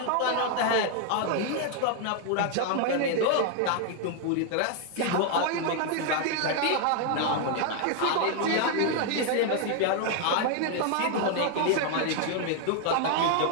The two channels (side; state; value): both; different; correlation 0.00